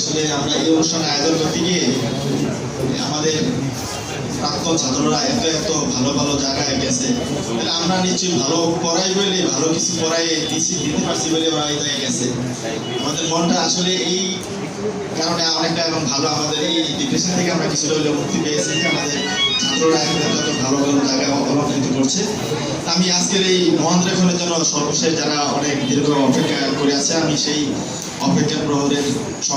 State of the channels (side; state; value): both; identical; correlation 1.00